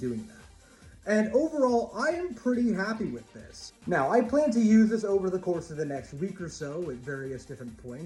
that. And overall, I am pretty happy with this. Now, I plan to use this over the course of the next week or so at various different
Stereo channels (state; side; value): identical; both; correlation 1.00